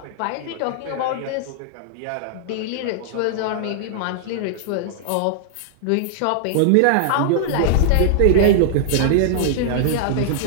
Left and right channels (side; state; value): both; different; correlation -0.01